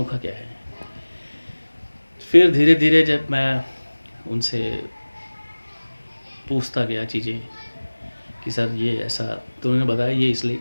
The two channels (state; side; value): inverted; both; correlation -1.00